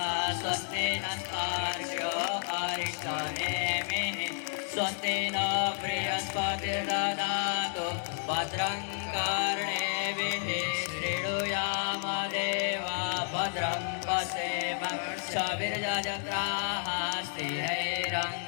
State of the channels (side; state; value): right; silent; 57 dB below the other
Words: स्वस्ति नस्तार्क्ष्यो अरिष्टनेमिः स्वस्ति न बृहस्पतिर्दधातु भद्रं कर्णेभिः शृणुयाम देवा भद्रं पश्येमाक्षभिर्यजत्राः